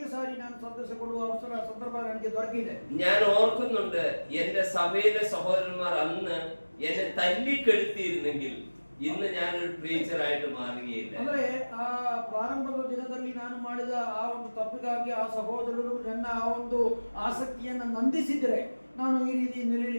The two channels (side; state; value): both; inverted; correlation -1.00